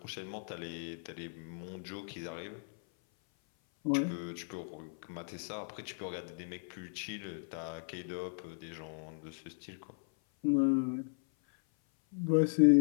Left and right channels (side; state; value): right; silent; 54 dB below the other